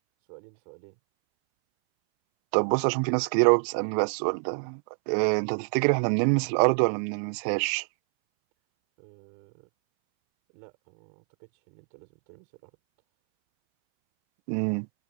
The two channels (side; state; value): left; silent; 61 dB below the other